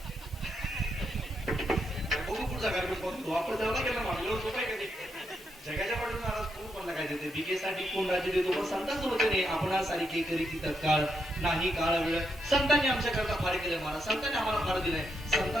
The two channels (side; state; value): both; normal; correlation 0.81